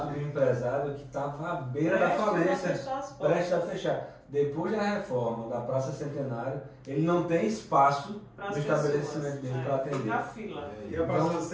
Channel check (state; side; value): identical; both; correlation 1.00